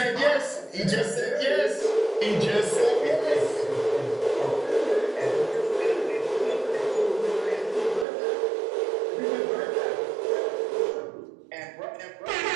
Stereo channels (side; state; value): left; drops out; at 8.1 s